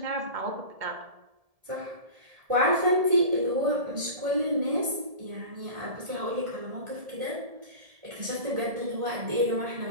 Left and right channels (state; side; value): late; left; 1.7 ms